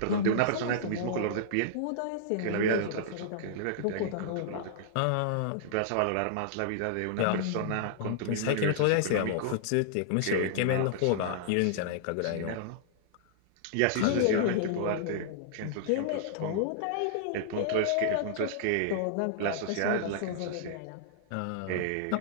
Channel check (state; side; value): different; both; correlation -0.01